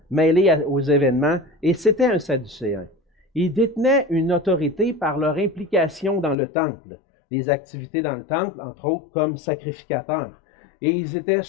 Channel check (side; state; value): right; drops out; at 6.4 s